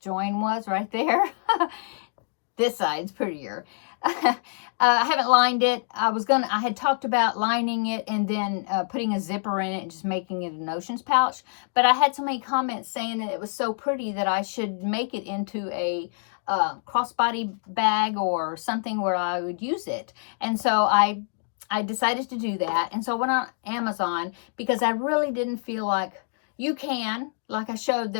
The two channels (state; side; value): silent; right; digital silence